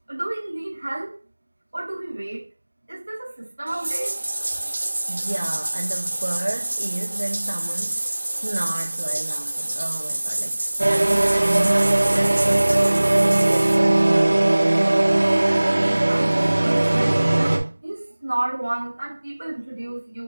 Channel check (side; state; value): both; inverted; correlation -1.00